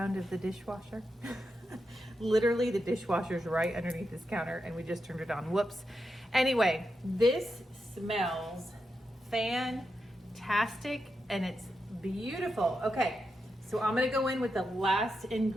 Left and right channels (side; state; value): both; normal; correlation 0.87